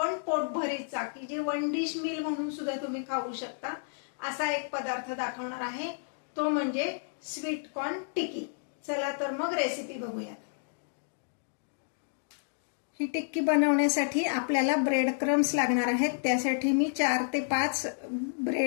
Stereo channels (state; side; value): silent; right; digital silence